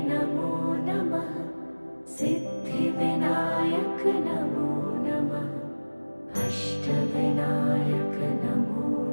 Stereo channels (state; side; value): inverted; both; correlation -1.00